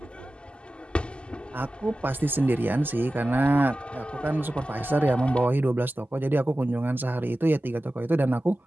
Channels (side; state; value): both; normal; correlation 0.95